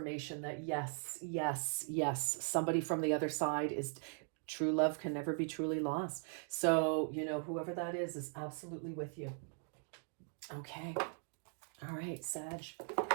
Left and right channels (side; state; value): left; silent; 51 dB below the other